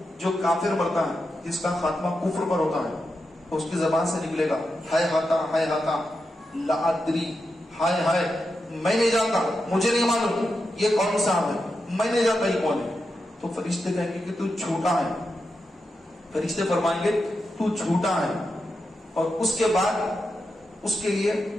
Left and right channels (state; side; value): normal; both; correlation 0.88